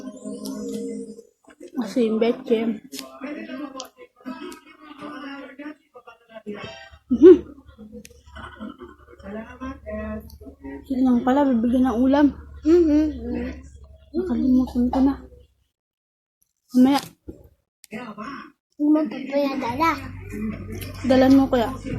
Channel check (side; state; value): both; identical; correlation 1.00